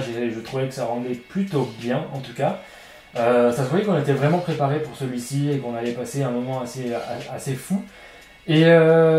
et je trouvais que ça rendait plutôt bien en tout cas. Ça se voyait qu'on était vraiment préparé pour celui-ci et qu'on allait passer un moment assez fou. Et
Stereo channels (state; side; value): identical; both; correlation 1.00